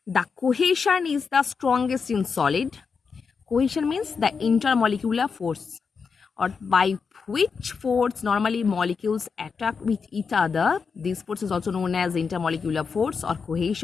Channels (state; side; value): quieter; right; 5.5 dB